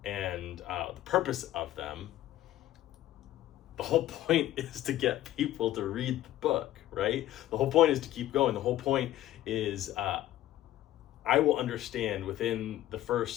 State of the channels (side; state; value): right; quieter; 13.9 dB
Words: and the purpose of them, the whole point is to get people to read the book, right? The whole point is to keep going. The whole point is I will understand within the